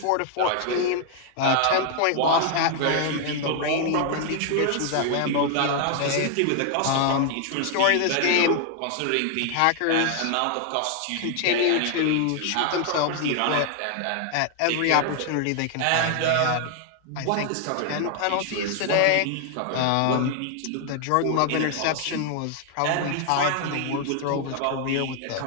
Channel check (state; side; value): different; both; correlation 0.00